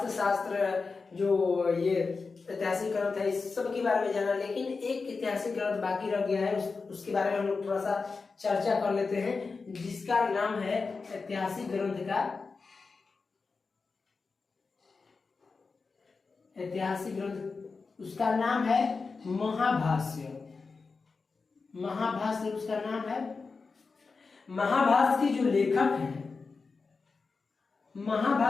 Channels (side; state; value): right; quieter; 4.5 dB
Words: जो ये ऐतिहासिक ग्रंथ है, इस सब के बारे में जाना। लेकिन एक ऐतिहासिक ग्रंथ बाकी रह गया है, उसके बारे में हम लोग थोड़ा सा चर्चा कर लेते हैं, जिसका नाम है ऐतिहासिक ग्रंथ का ऐतिहासिक ग्रंथ उसका नाम है महाभाष्य। महाभाष्य उसका नाम है। महाभाष्य के जो लेखक हैं,